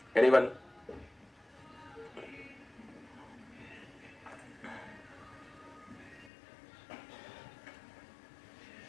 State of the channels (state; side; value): drops out; right; at 6.3 s